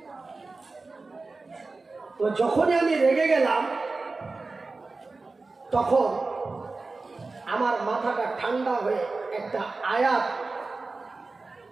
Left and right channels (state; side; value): quieter; left; 3.7 dB